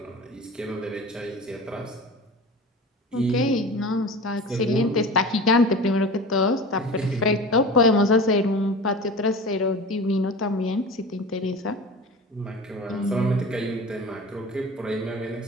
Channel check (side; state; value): both; normal; correlation 0.34